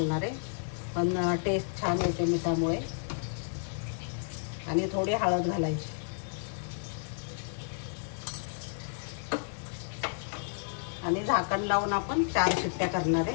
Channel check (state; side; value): silent; right; digital silence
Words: आहे, पण टेस्ट छान येते मिठामुळे। आणि थोडी हळद घालायची आणि झाकण लावून आपण 4 शिट्ट्या करणार